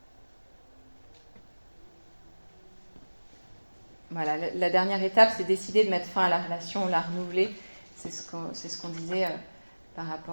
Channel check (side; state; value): both; inverted; correlation -1.00